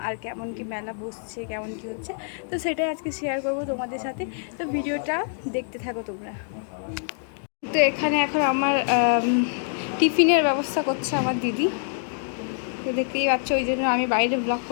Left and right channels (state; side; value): silent; right; digital silence